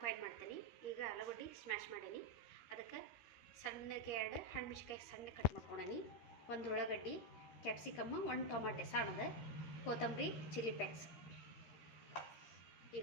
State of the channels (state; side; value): late; right; 13 ms